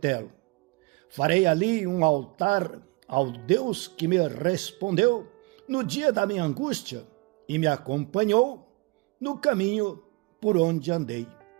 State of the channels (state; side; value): quieter; left; 25.5 dB